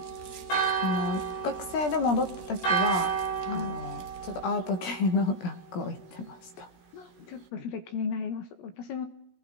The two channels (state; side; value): late; right; 17 ms